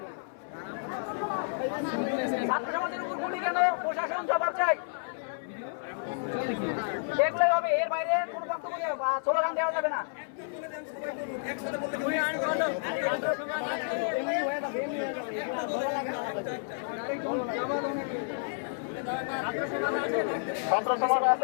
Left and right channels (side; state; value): right; silent; 57 dB below the other